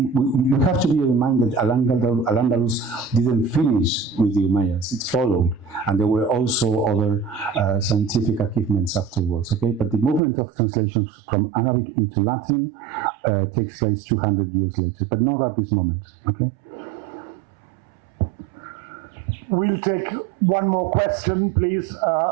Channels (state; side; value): drops out; left; at 10.2 s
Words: have to be reminded Al-Andalus didn't finish with the Umayyads, it followed. And there were also other scientific achievements afterwards, okay? But the movement of translations from Arabic into Latin takes place 200 years later, but not at this moment, okay? We'll take one more question, please.